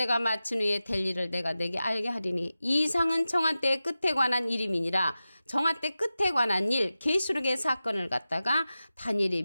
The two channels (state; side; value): inverted; both; correlation -0.94